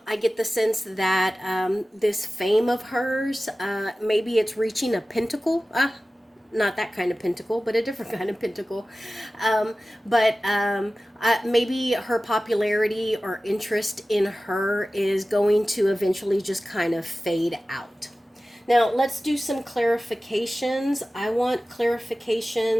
get the sense that this fame of hers, maybe it's reaching a pentacle. Not that kind of pentacle, but a different kind of pentacle. Maybe her popularity or interest in her is going to eventually just kind of fade out. Now, let's do some clarifications. I want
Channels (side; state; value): both; normal; correlation 0.96